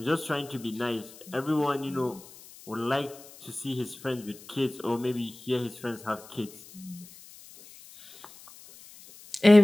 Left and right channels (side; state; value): left; noise; hiss, 20 dB below the sound